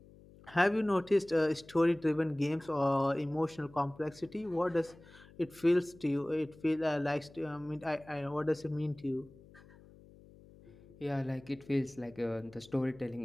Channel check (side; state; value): left; noise; hum, 23 dB below the sound